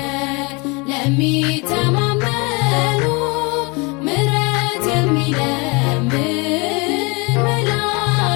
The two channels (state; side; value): quieter; right; 28.9 dB